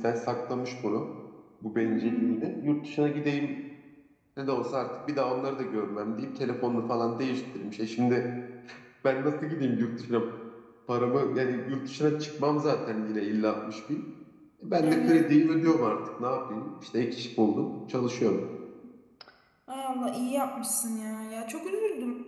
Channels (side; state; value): both; identical; correlation 1.00